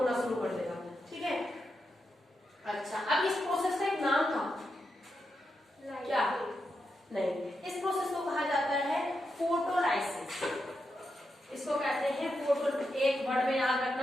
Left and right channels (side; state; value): both; normal; correlation 0.86